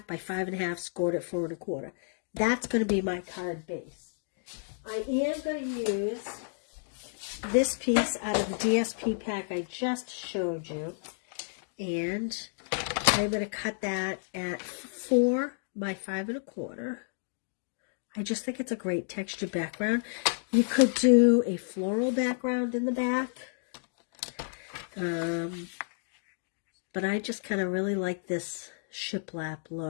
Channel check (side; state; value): right; silent; digital silence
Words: by 5.5, scored at 4 1/4. That's going to be my card base. I am going to use this piece out of the DSP pack I just showed you. And I'm going to cut that at 4 by 5 1/4. I just think it's a great textured background. You could do a floral background in the back. But I just kind of really like this shiplap